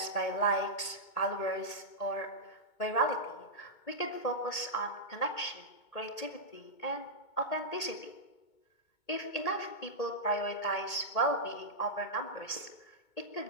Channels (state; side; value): late; right; 2.2 ms